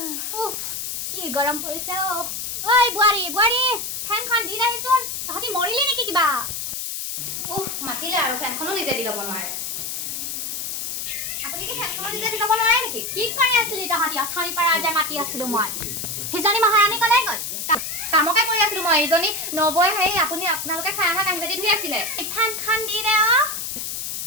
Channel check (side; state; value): left; noise; hiss, 4 dB below the sound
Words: উফ কি গৰম পৰিছে অ। ঐ বোৱাৰী ফেনখন দি আহিছোন। তহঁতি মৰিলি নেকি কিবা? উফ মাতিলে আৰু ফেনখনো নিজে দি ল'ব নোৱাৰে। আপুনি কি ফেনখনো নিজে দি ল'ব নোৱাৰে নেকি? কি কৰি আছিলি তহঁতি? অথনিৰ পৰা যে মাতি আছিলো মই। সিজনী মহাৰাণী কলৈ গ'ল? কামকে কৰি আছিলো মই। এইজনী নবৈ আপোনালোকে খাই অহা কাঁহী বাতি ধুই আছিলে। ফেনখন দি দে অ।